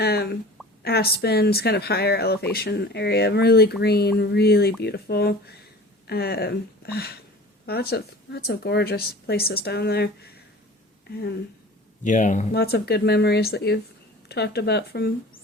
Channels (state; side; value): normal; both; correlation 0.41